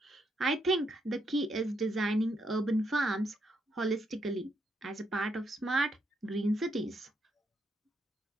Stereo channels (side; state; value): both; normal; correlation 0.77